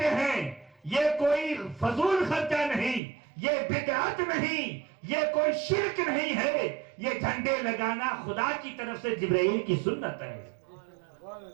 ہیں یہ کوئی فضول خرچہ نہیں، یہ بدعت نہیں، یہ کوئی شرک نہیں ہے، یہ جھنڈے لگانا خدا کی طرف سے جبرائیل کی سنت ہے۔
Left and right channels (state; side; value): drops out; left; at 3.0 s